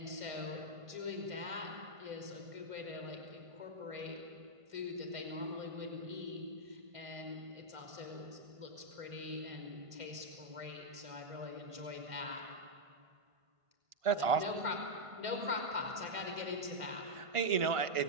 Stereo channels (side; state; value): left; late; 1.5 ms